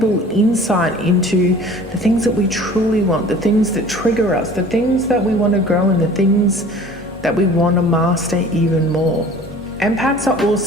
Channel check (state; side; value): normal; both; correlation 0.46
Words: insight into the things that we truly want, the things that trigger us, the things that we want to grow, and the things that we want to master even more. Empaths are